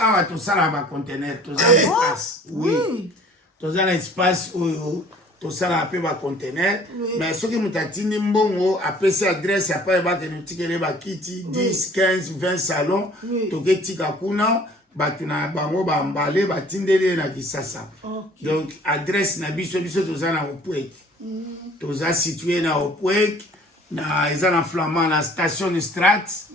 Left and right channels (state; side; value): normal; both; correlation 0.52